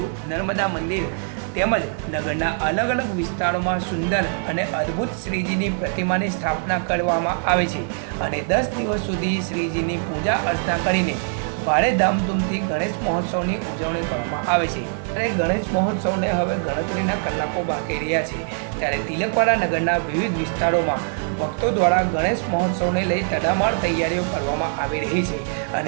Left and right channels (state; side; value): silent; left; 64 dB below the other